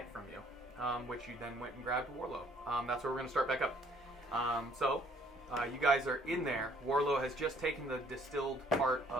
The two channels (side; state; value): both; normal; correlation 0.62